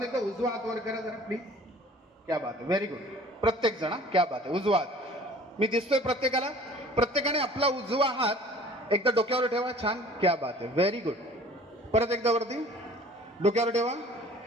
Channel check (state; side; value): normal; both; correlation 0.49